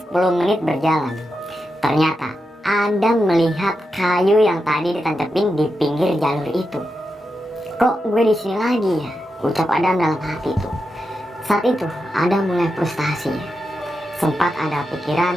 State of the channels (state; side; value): normal; both; correlation 0.88